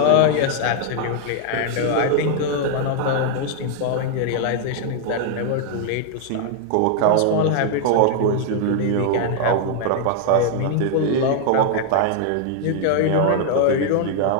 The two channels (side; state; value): both; different; correlation 0.00